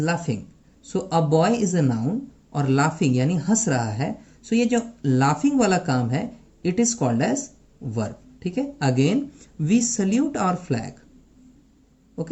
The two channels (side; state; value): both; identical; correlation 1.00